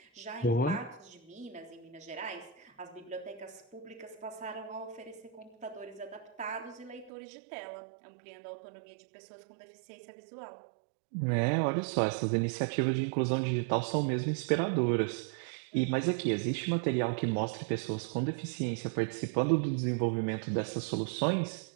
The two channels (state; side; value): drops out; left; at 7.1 s